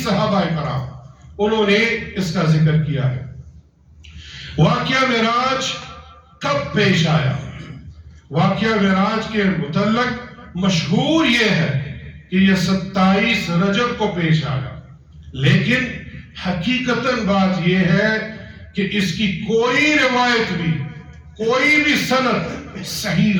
صحابہ کرام، انہوں نے اس کا ذکر کیا ہے۔ واقعہ معراج کب پیش آیا؟ واقعہ معراج کے متعلق مشہور یہ ہے کہ یہ 27 رجب کو پیش آیا، لیکن حقیقتاً بات یہ ہے کہ اس کی کوئی روایت بھی، کوئی بھی سند صحیح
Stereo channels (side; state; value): both; identical; correlation 1.00